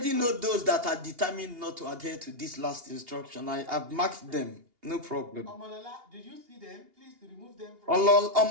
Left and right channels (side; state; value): left; late; 2.8 ms